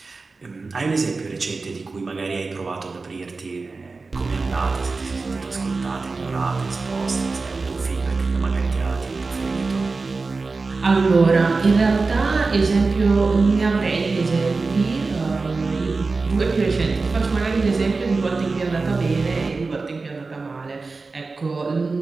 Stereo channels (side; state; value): left; quieter; 4.0 dB